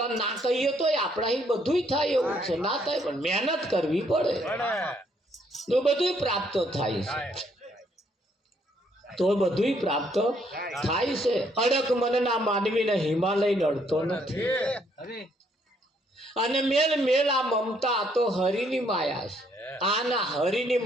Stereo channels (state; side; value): normal; both; correlation 0.69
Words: ના કહીએ તો આપણા બધું થાય એવું છે ના થાય પણ મહેનત કરવી પડે તો બધું પ્રાપ્ત થાય છે તો બધું પ્રાપ્ત થાય છે અડક મનના માનવીને હિમાલય નડતો નથી અને મેલ મેલ આ મમતા તો હરિની માયા છે આના હરિની